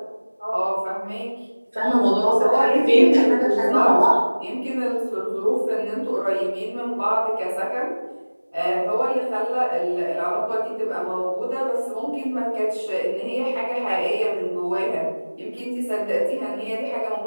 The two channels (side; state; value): both; inverted; correlation -1.00